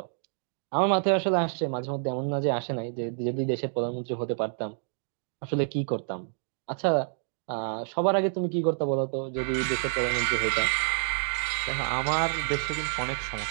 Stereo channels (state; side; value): silent; left; digital silence